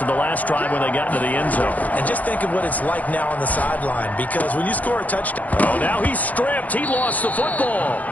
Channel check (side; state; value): right; late; 0.077 ms